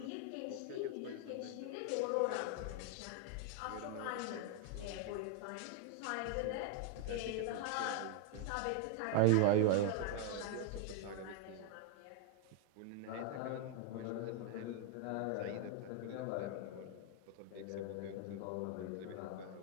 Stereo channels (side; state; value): both; different; correlation 0.00